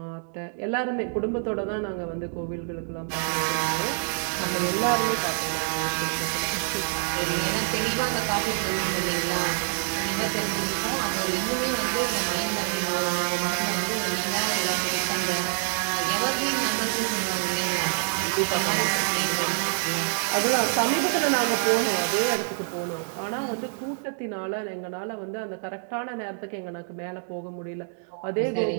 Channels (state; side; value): silent; left; 60 dB below the other